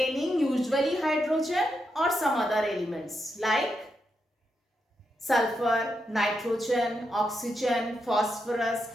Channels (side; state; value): both; normal; correlation 0.83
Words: usually hydrogen or some other elements like sulfur, nitrogen, oxygen, phosphorus,